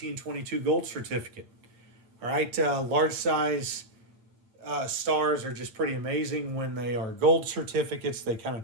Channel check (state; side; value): late; left; 8.7 ms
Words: gold certificate. All right, large size stars are just pretty amazing. When they are gold certificates, they kind of